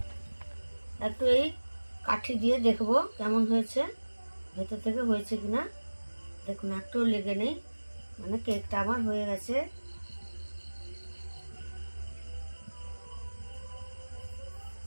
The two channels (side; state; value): both; inverted; correlation -1.00